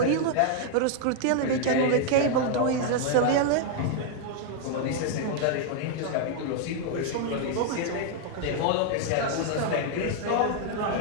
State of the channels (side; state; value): both; different; correlation 0.00